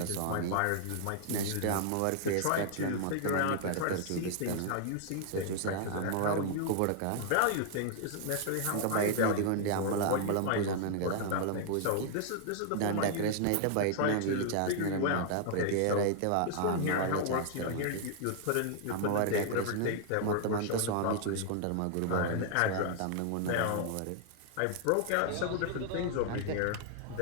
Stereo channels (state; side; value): different; both; correlation 0.00